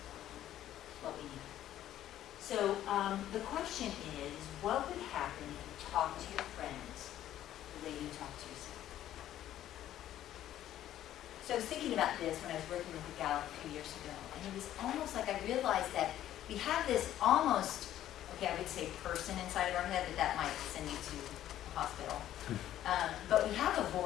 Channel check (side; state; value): right; quieter; 12.3 dB